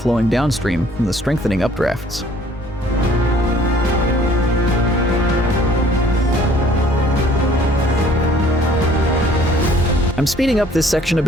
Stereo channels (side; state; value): both; normal; correlation 0.57